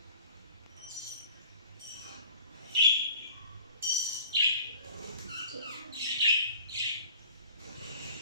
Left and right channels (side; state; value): both; inverted; correlation -0.46